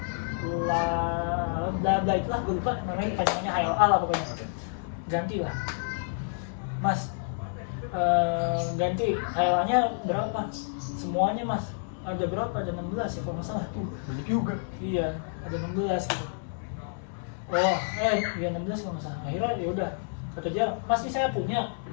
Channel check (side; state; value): right; silent; digital silence